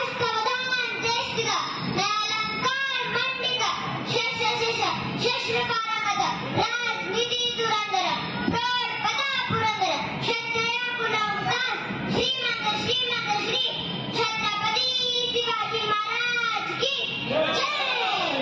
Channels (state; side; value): identical; both; correlation 1.00